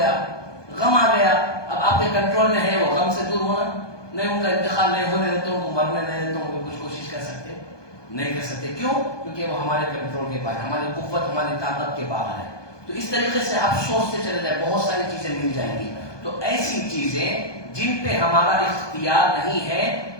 غم آ گیا، اب آپ کے کنٹرول میں ہے وہ غم سے دور ہونا، نہیں ان کا انتقال نہیں ہونے دیتے ہوں، مرنے نہیں دیتے ہوں، کچھ کوشش کر سکتے نہیں کر سکتے، کیوں؟ کیونکہ وہ ہمارے کنٹرول کے باہر، ہماری قوت، ہماری طاقت کے باہر ہے۔ تو اس طریقے سے آپ سوچتے چلے جائیں، بہت ساری چیزیں مل جائیں گی۔ تو ایسی چیزیں جن پہ ہمارا اختیار نہیں ہے،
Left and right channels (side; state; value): right; late; 1.2 ms